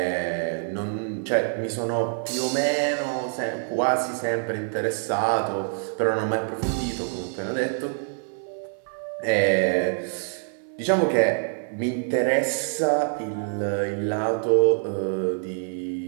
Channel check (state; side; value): silent; left; 61 dB below the other